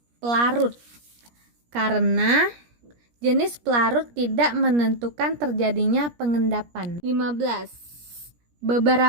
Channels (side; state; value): left; late; 17 ms